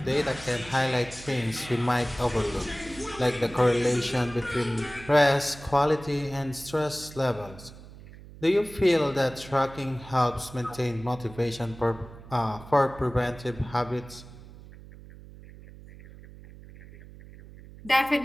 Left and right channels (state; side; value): noise; right; hum, 18 dB below the sound